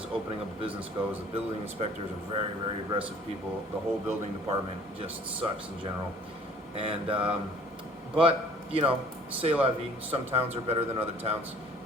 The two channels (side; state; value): both; normal; correlation 0.53